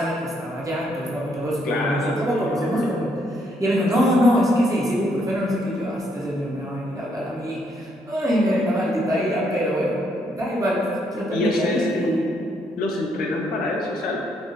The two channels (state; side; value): normal; both; correlation 0.73